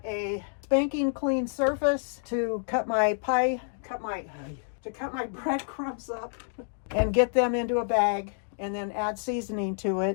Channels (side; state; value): right; silent; digital silence